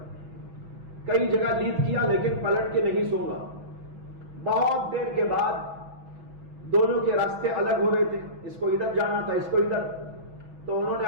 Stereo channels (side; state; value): left; late; 6.1 ms